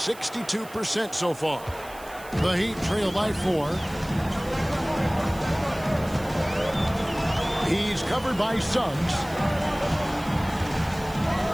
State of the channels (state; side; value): noise; right; hiss, 19 dB below the sound